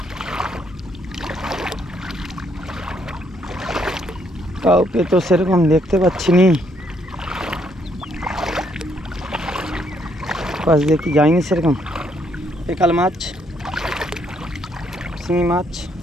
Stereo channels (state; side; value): normal; both; correlation 0.72